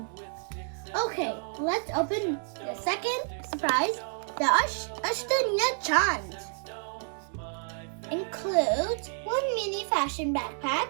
Okay, let's open the second surprise. The eshte chant includes 1 mini fashion backpack,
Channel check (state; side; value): silent; left; 57 dB below the other